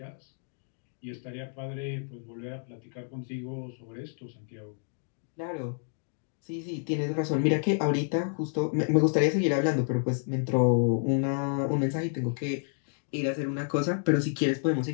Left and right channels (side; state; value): right; silent; 58 dB below the other